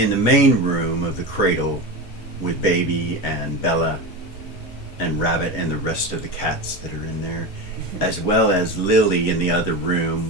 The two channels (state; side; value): normal; both; correlation 0.22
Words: the main room of the cradle with Baby and Bella and Rabbit and the rest of the cats that are in there, as well as Lily in the other